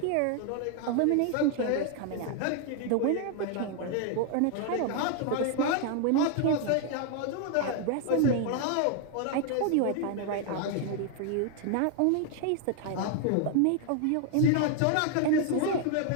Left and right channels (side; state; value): both; different; correlation 0.00